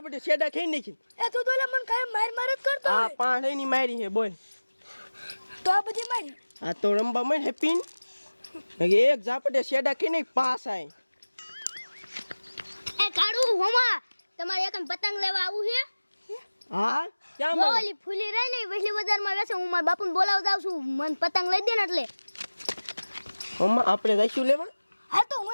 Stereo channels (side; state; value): both; inverted; correlation -1.00